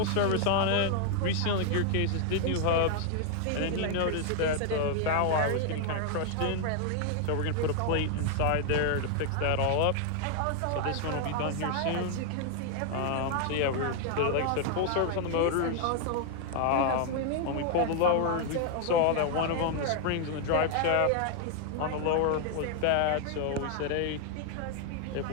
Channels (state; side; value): different; both; correlation 0.00